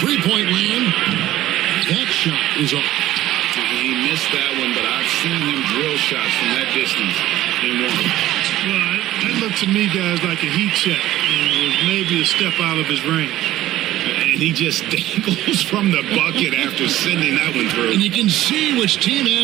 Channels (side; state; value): left; quieter; 14.7 dB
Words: land, that shot is off. He missed that one, but I've seen him drill shots from that distance in one. Well, that looked to me, guys, like a heat check. It was maybe a step out of his range. And he just dangles from the bucket after sending that one through. And you can see which team